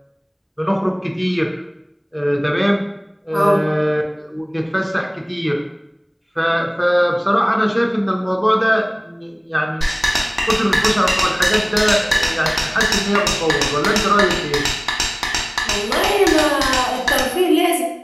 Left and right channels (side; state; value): both; identical; correlation 1.00